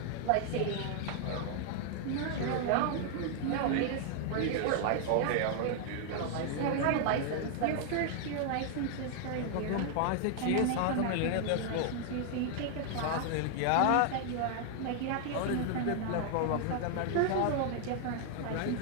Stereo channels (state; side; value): different; both; correlation 0.00